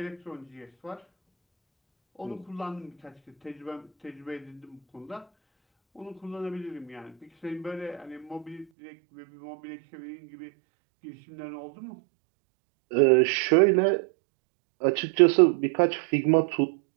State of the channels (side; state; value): left; drops out; at 8.7 s